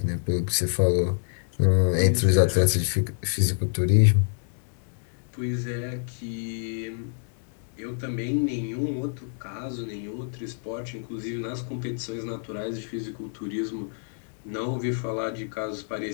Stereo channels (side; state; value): right; silent; digital silence